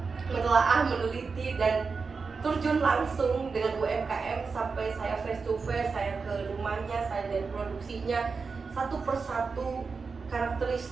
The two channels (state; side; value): quieter; left; 4.8 dB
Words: menelaah, meneliti dan terjun langsung dengan UMKM sampai saya face to face, saya ke rumahnya, saya lihat produksinya satu persatu,